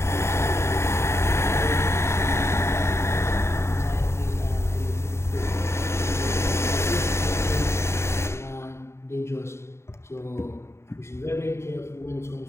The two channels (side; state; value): right; late; 0.13 ms